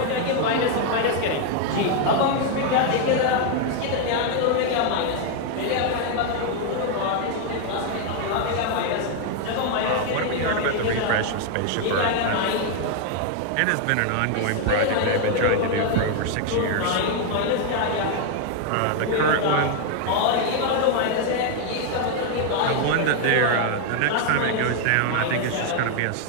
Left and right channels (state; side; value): different; both; correlation 0.00